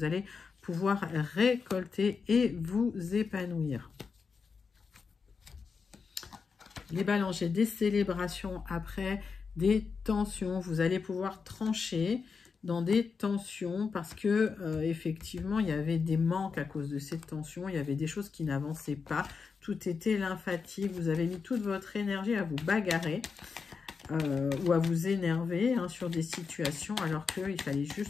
allez pouvoir récolter et vous épanouir. Les balances, j'ai des célébrations après, des tensions. Vous allez pouvoir trancher dans des tensions parce que effectivement il y avait des manques à cause de ces tensions, il y avait des choses qui n'avançaient pas, tout était lymphatique, vous avez mis toute votre énergie à vous bagarrer ou à vous énerver hein, sur des situations alors qu'il fallait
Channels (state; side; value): quieter; right; 5.3 dB